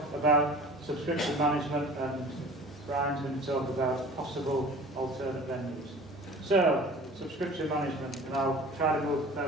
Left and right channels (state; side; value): normal; both; correlation 0.43